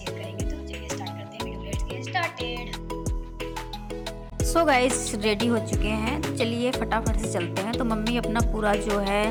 करेंगे। तो चलिए स्टार्ट करते हैं video, let's get started. So guys ready हो चुके हैं, तो चलिए फटाफट से चलते हैं। तो मम्मी अपना पूरा जो है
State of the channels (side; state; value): both; identical; correlation 1.00